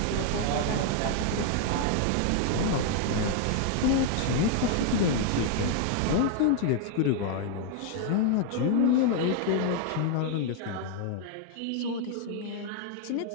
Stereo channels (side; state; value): both; different; correlation 0.00